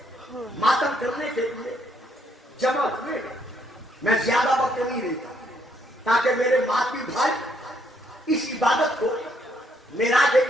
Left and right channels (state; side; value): normal; both; correlation 0.72